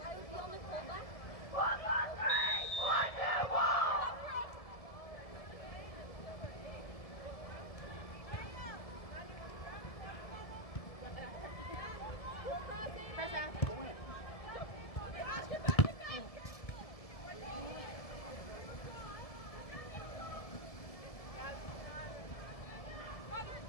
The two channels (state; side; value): late; right; 1.7 ms